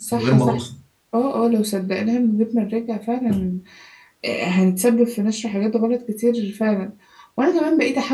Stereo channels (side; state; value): both; identical; correlation 1.00